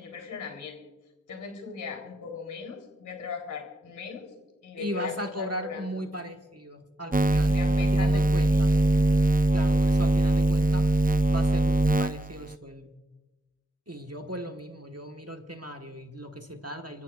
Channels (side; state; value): both; normal; correlation 0.81